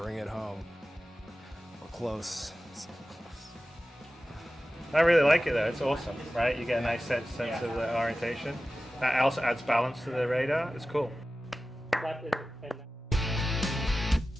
it home. We're close. So close. I really like it though. It's awesome, right? You get a nice sense of the orientation. That also adds balance to the radar. It's cool.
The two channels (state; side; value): normal; both; correlation 0.95